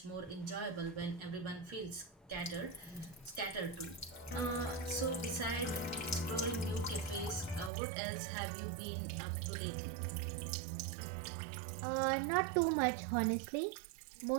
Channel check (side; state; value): left; drops out; at 7.7 s